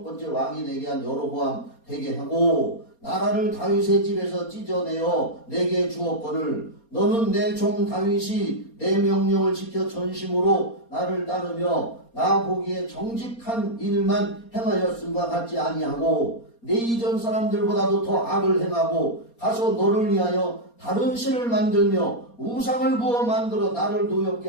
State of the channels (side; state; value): right; late; 4.3 ms